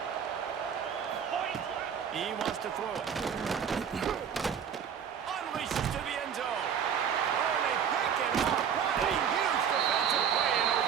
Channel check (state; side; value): quieter; left; 7.9 dB